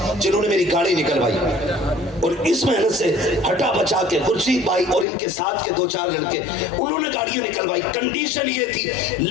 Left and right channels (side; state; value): right; drops out; at 5.1 s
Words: جنہوں نے میری گاڑی نکلوائی، اور اس محنت سے ہٹا بچا کے خورشید بھائی اور ان کے ساتھ کے 2-4 لڑکے انہوں نے گاڑیاں نکلوائی۔ کنڈیشن یہ تھی،